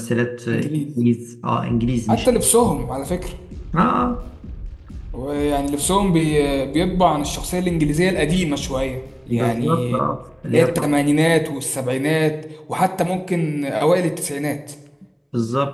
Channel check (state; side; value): identical; both; correlation 1.00